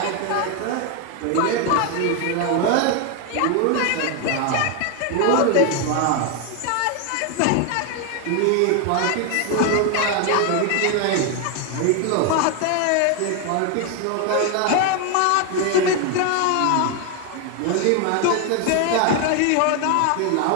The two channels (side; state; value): both; different; correlation 0.01